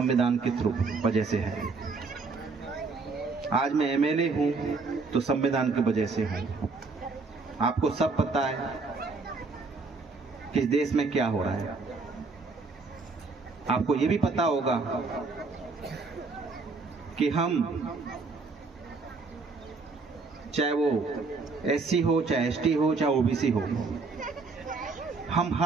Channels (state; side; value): quieter; left; 4.2 dB